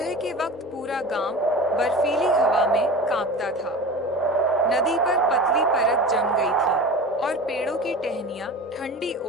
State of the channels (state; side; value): normal; both; correlation 0.34